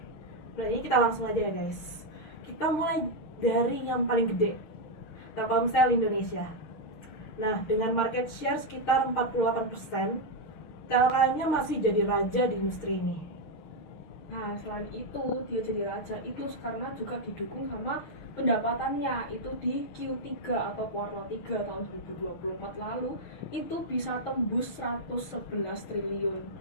berarti kita langsung aja ya guys. Kita mulai dari yang paling gede, Telkomsel Indonesia. Nah, dengan market share sekitar 48%, Telkomnya masih jadi raja di industri ini. Nah, selain itu dia jadi raja itu karena juga didukung sama pendapatannya itu di Q3 atau kuartal 3 tahun 2024 lalu itu bisa tembus 111 triliun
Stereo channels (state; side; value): late; right; 6.5 ms